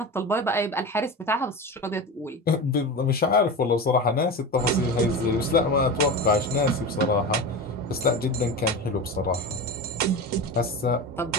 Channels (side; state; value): both; normal; correlation 0.26